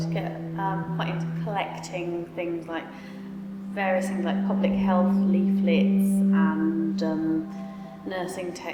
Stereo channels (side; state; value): both; identical; correlation 1.00